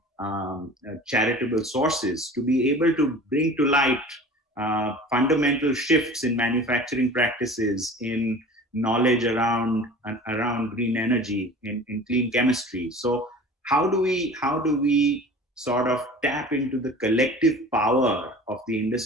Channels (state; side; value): normal; both; correlation 0.41